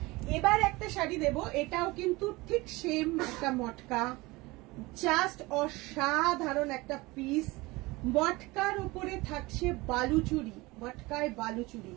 এবার একটা শাড়ি দেব, এটাও কিন্তু ঠিক সেম একটা মটকা, জাস্ট অসাধারণ একটা পিস। মটকার উপরে থাকছে বালুচুরি, মটকায় বালুচুরি,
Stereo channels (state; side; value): quieter; left; 22.1 dB